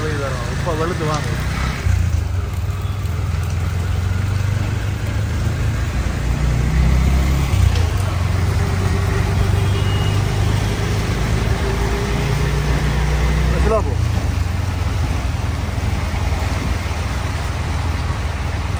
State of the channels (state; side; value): identical; both; correlation 1.00